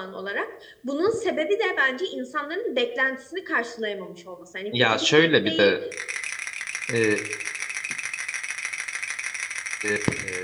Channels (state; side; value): identical; both; correlation 1.00